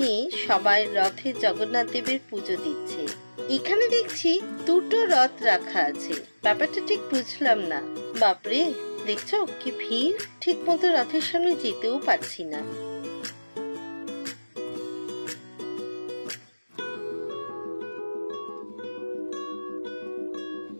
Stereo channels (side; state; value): both; inverted; correlation -1.00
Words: সবাই রথে জগন্নাথ দেবের পুজো দিচ্ছে। এখানে দেখছি দুটো রথ রাখা আছে, ব্যাপারটা ঠিক বুঝলাম না। বাপরে, দেখছো কি ভিড়, ঠিক মতো রথের সামনে যেতেও পারছি না।